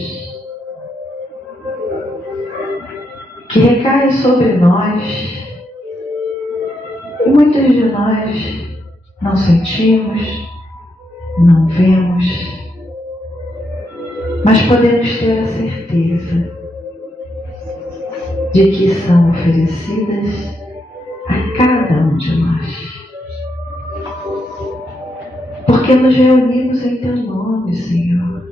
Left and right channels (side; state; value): both; normal; correlation 0.81